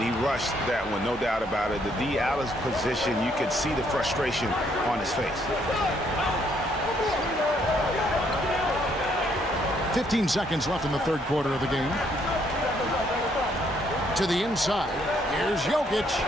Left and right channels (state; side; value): normal; both; correlation 0.69